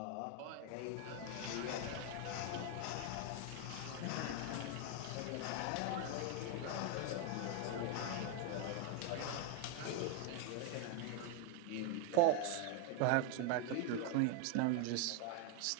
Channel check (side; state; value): both; different; correlation 0.01